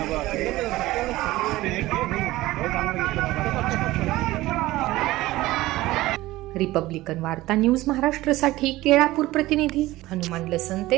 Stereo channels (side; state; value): left; quieter; 17.7 dB